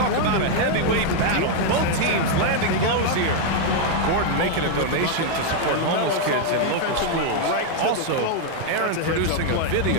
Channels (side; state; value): both; different; correlation 0.00